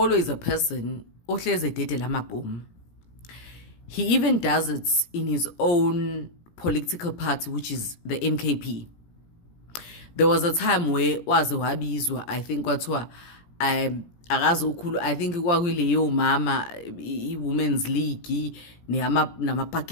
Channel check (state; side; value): late; right; 17 ms